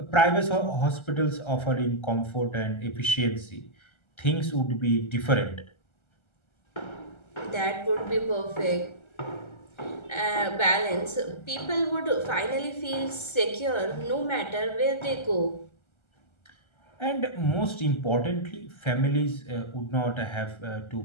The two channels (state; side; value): late; right; 1.3 ms